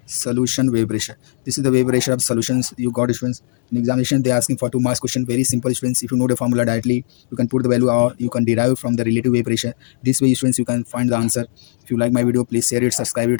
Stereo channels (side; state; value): right; silent; digital silence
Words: solution wave pressure. This is the wave pressure of solutions you got, students. In examination, they are asking for 2 marks question. Very simple, students. If you know the formula directly, you can put the value or you can derive from the relative wave pressure. This way, students, you can find the answer. If you like my video, please share it, subscribe